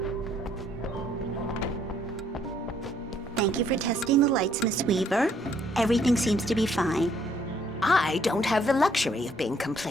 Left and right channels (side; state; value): both; normal; correlation 0.66